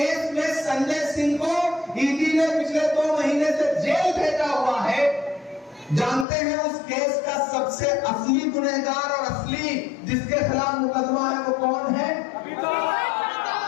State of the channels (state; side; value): drops out; right; at 6.2 s